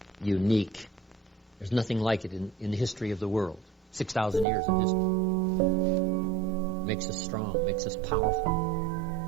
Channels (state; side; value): drops out; left; at 4.5 s